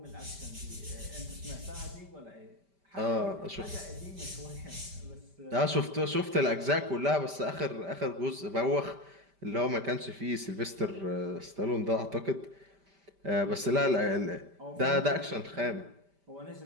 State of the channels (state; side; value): late; left; 5.1 ms